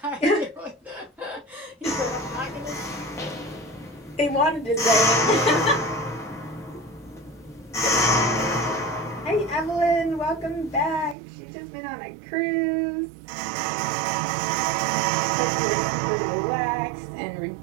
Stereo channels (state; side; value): drops out; left; at 11.2 s